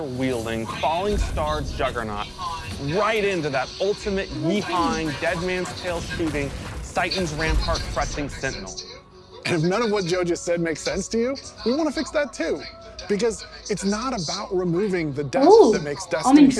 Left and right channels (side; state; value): both; identical; correlation 1.00